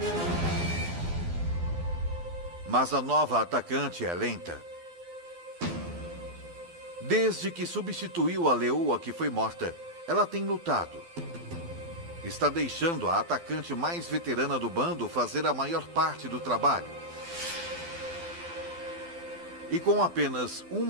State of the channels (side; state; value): left; late; 12 ms